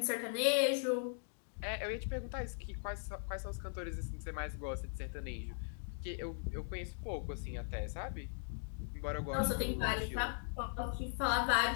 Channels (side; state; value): right; silent; digital silence